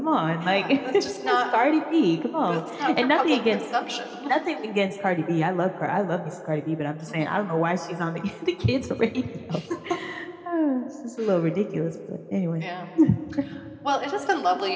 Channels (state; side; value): identical; both; correlation 1.00